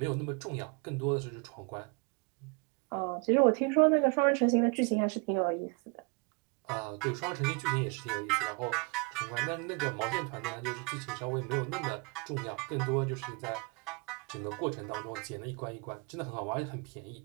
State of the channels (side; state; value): left; quieter; 31.9 dB